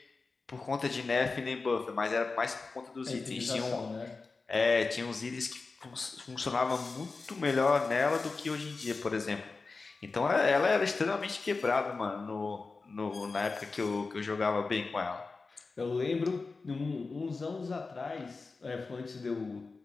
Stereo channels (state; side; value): quieter; right; 4.1 dB